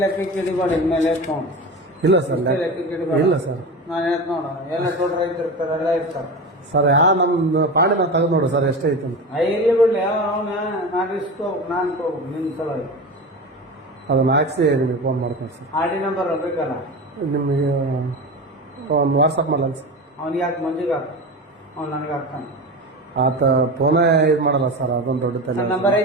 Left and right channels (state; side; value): normal; both; correlation 0.27